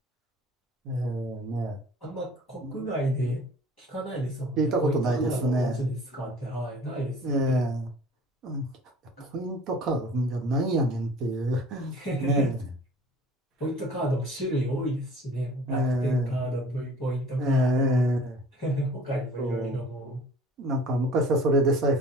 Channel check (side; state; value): both; normal; correlation 0.48